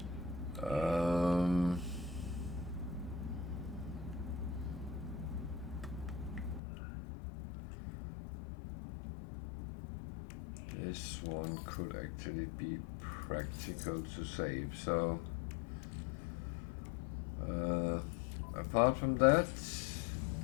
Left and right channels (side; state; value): right; drops out; at 6.6 s